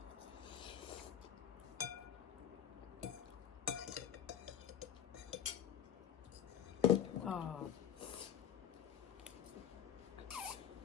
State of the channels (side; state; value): right; quieter; 9.4 dB